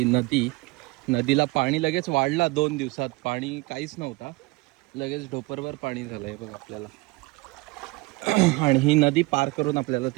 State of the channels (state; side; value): quieter; left; 23.8 dB